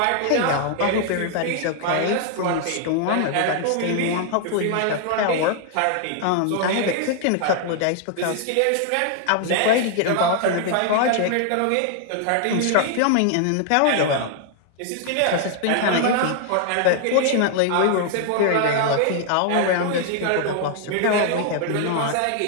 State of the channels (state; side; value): different; both; correlation 0.00